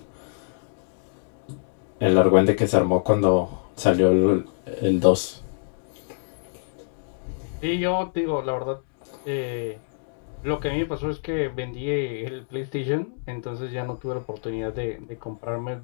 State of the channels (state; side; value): silent; right; digital silence